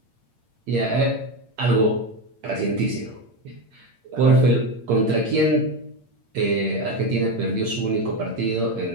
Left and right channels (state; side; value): late; left; 8.8 ms